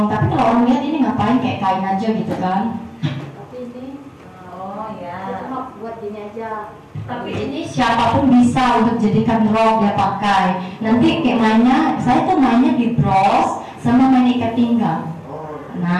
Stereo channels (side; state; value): both; identical; correlation 1.00